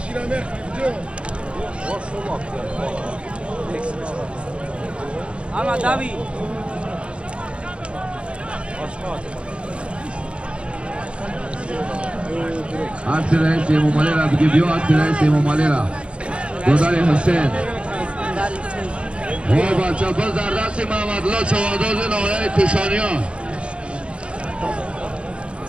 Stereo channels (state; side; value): late; left; 0.059 ms